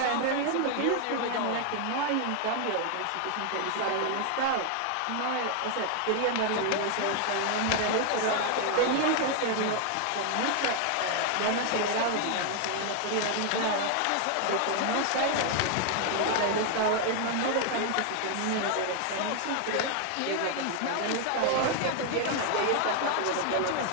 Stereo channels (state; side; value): different; both; correlation 0.00